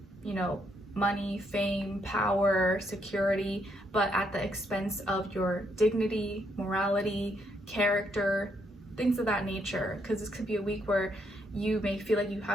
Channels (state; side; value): normal; both; correlation 0.75